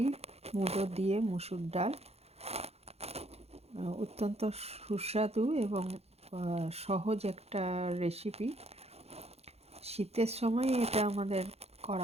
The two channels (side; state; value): left; late; 0.30 ms